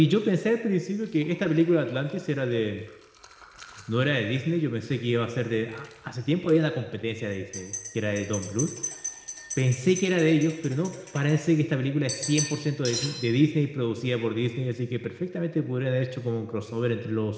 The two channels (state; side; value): identical; both; correlation 1.00